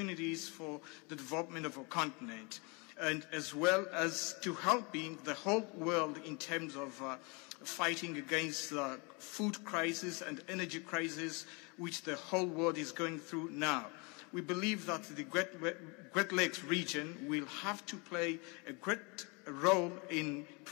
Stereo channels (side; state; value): right; quieter; 30.6 dB